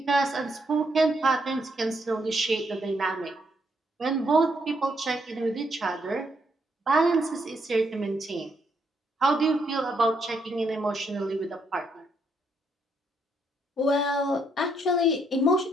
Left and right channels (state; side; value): normal; both; correlation 0.74